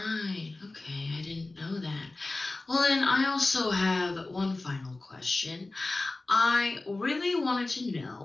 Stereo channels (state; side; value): quieter; right; 3.1 dB